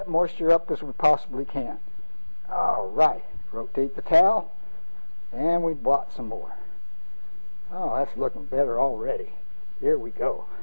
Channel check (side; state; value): both; inverted; correlation -1.00